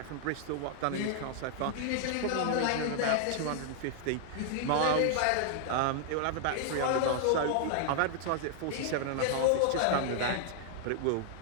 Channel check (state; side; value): different; both; correlation -0.01